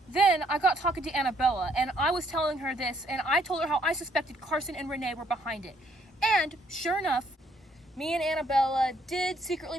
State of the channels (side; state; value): both; normal; correlation 0.68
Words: Then I got talking to Annabella, and I was telling her this, and I told her how I suspected Carson and Renee were behind it. And sure enough, me and Annabella did